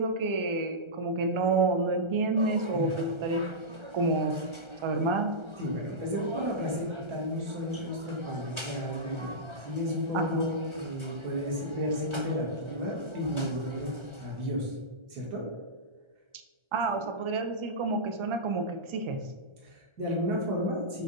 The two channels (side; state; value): left; late; 1.3 ms